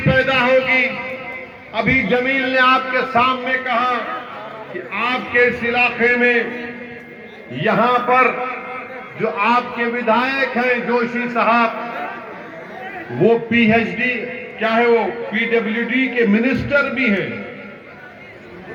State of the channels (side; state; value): both; identical; correlation 1.00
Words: पैदा होगी। अभी जमील ने आपके सामने कहा कि आपके इस इलाके में यहां पर जो आपके विधायक हैं जोशी साहब, वो पीएचडी क्या है, वो पीडब्ल्यूडी के मिनिस्टर भी हैं,